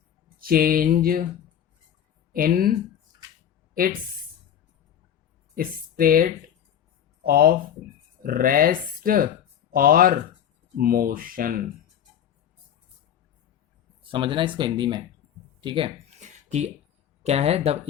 change in its state of rest और मोशन. समझना इसको हिंदी में, ठीक है, कि क्या है, द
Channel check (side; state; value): right; quieter; 9.7 dB